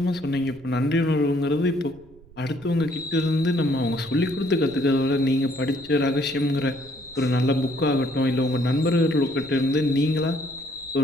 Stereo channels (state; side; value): noise; right; rumble, 24 dB below the sound